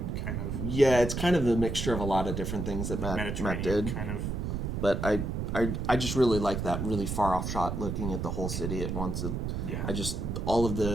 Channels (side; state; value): right; noise; rumble, 3 dB below the sound